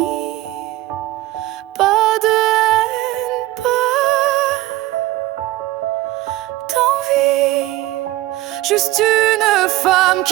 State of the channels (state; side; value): quieter; left; 16.8 dB